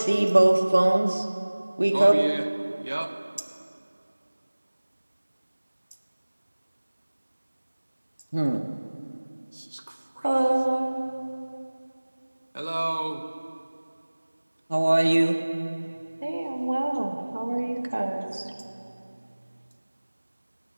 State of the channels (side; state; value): both; inverted; correlation -1.00